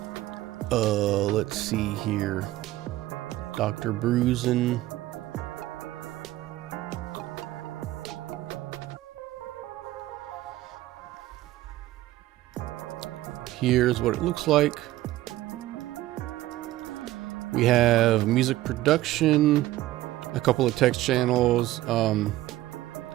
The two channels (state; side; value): quieter; left; 16.0 dB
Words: Let's see here. Dr. Bruisin. Here's what it looks like. We have music production, a couple of text channels.